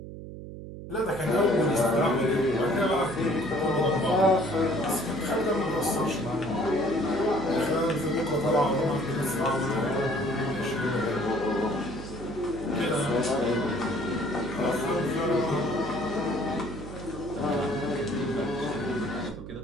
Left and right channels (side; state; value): right; noise; hum, 11 dB below the sound